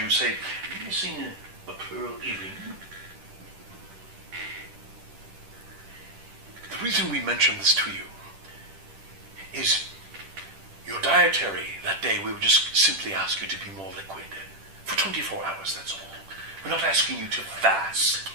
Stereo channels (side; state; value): left; late; 10 ms